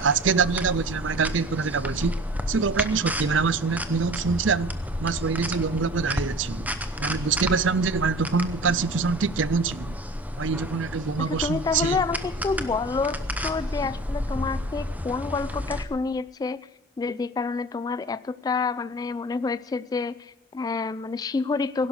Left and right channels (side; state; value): both; normal; correlation 0.41